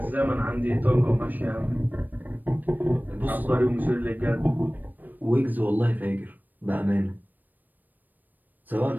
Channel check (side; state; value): left; late; 0.088 ms